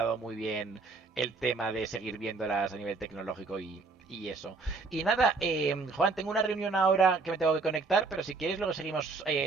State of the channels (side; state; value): left; quieter; 4.1 dB